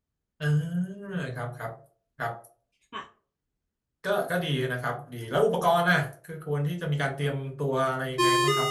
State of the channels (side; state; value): both; identical; correlation 1.00